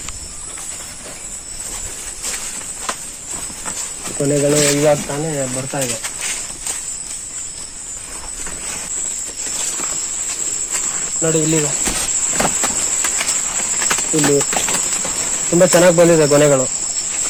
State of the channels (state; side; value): identical; both; correlation 1.00